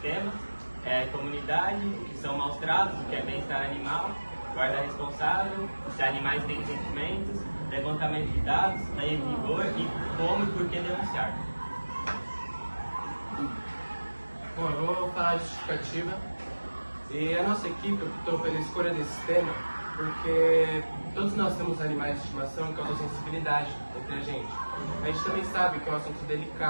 tema, comunidade, que são maus tratos, o que é bem-estar animal, guarda responsável, se animais têm sentimentos, levantamento de dados, lei em vigor e como e por que denunciar. Bom, eu vou falar a justificativa. E a nossa equipe optou pela escolha desse tema porque todos nós temos animais de estimação que causam sensibilidade entre a gente. A gente também sabe que é um assunto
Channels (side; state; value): both; inverted; correlation -1.00